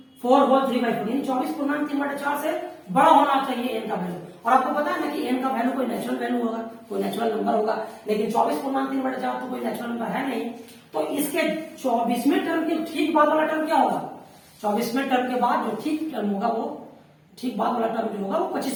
होल 3/4, यानी 24/3/4 से बड़ा होना चाहिए n का वैल्यू। और आपको पता है ना कि n का वैल्यू कोई नेचुरल वैल्यू होगा, कोई नेचुरल नंबर होगा, लेकिन 24/3/4 तो कोई नेचुरल नंबर है नहीं। तो इसके 24वें टर्म के ठीक बाद वाला टर्म क्या होगा, 24वें टर्म के बाद जो ठीक टर्म होगा वो ठीक बाद वाला टर्म जो होगा वो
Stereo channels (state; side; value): identical; both; correlation 1.00